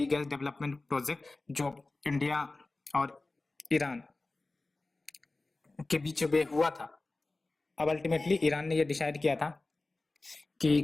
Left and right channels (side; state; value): right; quieter; 3.2 dB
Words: gas development project जो इंडिया और ईरान के बीच में हुआ था, अब अल्टीमेटली ईरान ने ये डिसाइड किया था